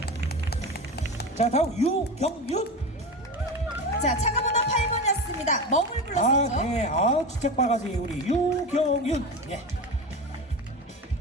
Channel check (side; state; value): both; normal; correlation 0.25